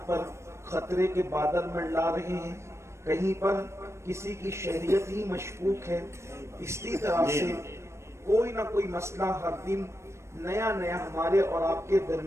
پر خطرے کے بادل منڈلا رہے ہیں، کہیں پر کسی کی شہریت ہی مشکوک ہے۔ اسی طرح سے کوئی نہ کوئی مسئلہ ہر دن نیا ہمارے اور آپ کے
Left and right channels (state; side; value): late; left; 0.13 ms